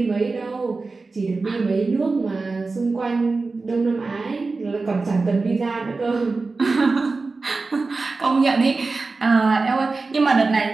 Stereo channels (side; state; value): left; quieter; 3.8 dB